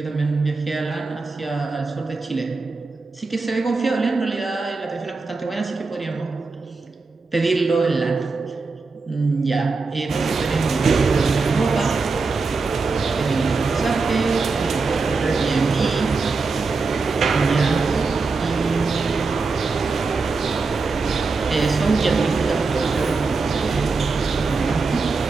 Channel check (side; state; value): left; quieter; 4.2 dB